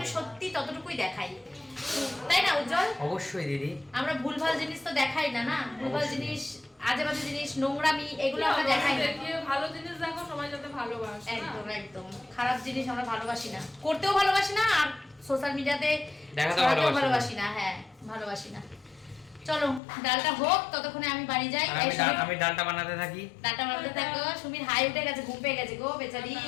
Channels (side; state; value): right; drops out; at 19.8 s